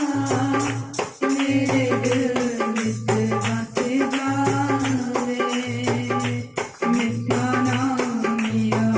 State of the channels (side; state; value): both; identical; correlation 1.00